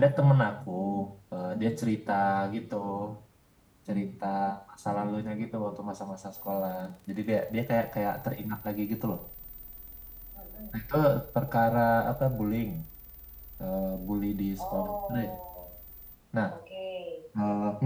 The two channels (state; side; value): identical; both; correlation 1.00